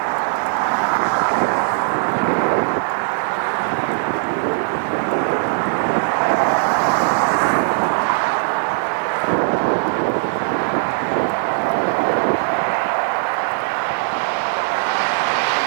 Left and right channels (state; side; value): silent; left; digital silence